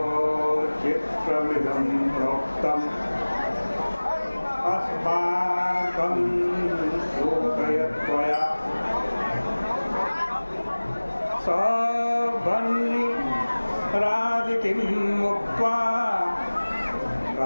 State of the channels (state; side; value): inverted; both; correlation -1.00